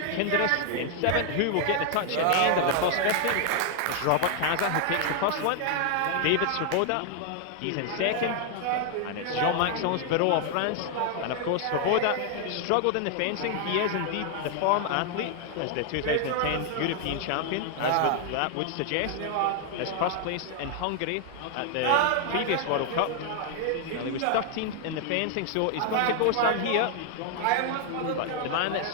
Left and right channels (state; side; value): different; both; correlation 0.00